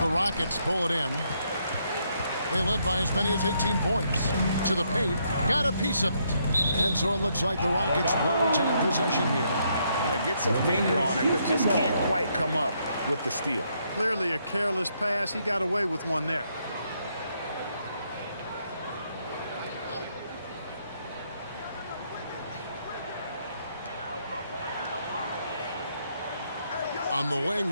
Rockets pull it in. They led by as many as 18 points. To the paint, got a piece of it. And so it looks like the Rockets will retain possession here. Yeah, gets a finger on it, but just can't quite come up with the steal. Clearly a careless pass. He got away with one there. On the wing,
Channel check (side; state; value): both; inverted; correlation -0.74